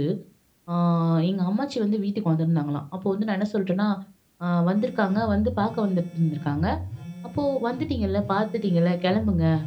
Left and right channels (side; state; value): both; identical; correlation 1.00